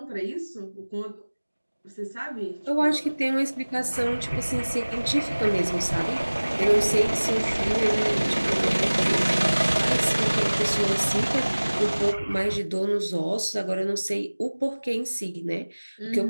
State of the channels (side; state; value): both; inverted; correlation -1.00